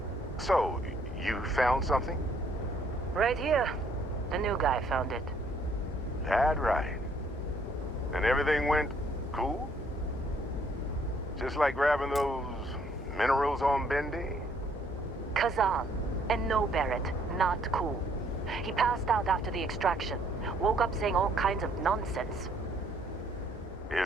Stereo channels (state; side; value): normal; both; correlation 0.65